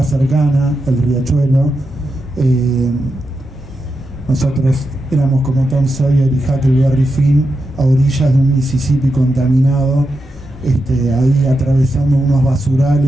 cercana, el riachuelo. Nosotros éramos como Tom Sawyer y Huckleberry Finn a orillas de un Mississippi contaminado, ahí atravesando unos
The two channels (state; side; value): normal; both; correlation 0.87